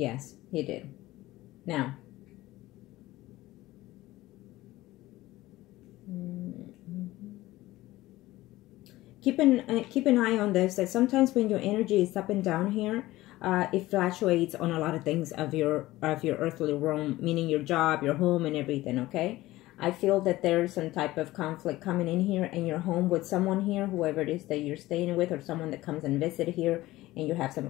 he did. Now, keep an eye on this, that sometimes when your energy is up and down here, it fluctuates on a lot of things of your earthly realm, meaning your job, your home, and everything. Okay, I feel that there's some type of conflict coming in here in your home with someone here, whoever it is that you're staying with, or someone that comes and visit here, and you have some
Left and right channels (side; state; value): right; quieter; 17.4 dB